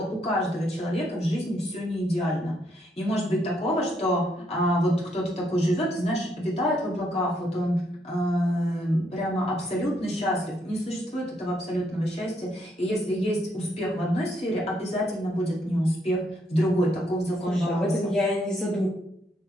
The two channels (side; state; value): both; normal; correlation 0.74